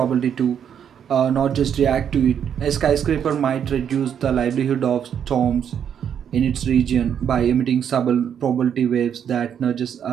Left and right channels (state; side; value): quieter; left; 8.5 dB